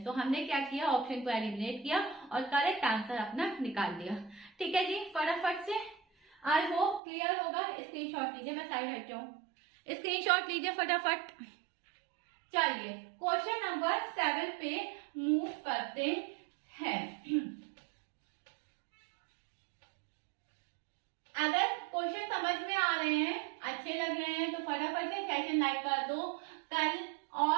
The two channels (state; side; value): drops out; left; at 7.0 s